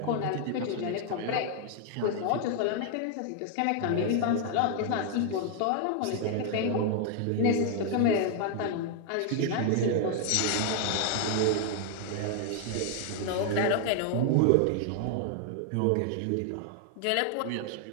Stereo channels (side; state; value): both; different; correlation 0.00